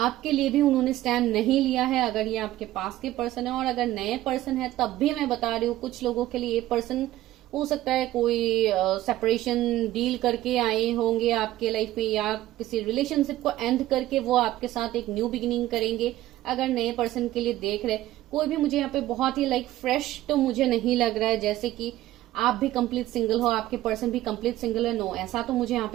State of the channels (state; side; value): quieter; left; 15.1 dB